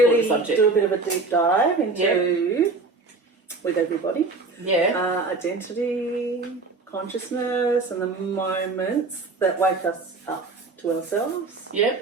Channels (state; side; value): quieter; left; 3.7 dB